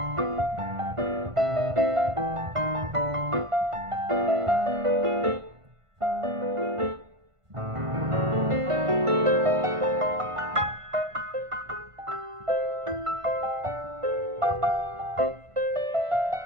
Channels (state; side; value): late; left; 1.5 ms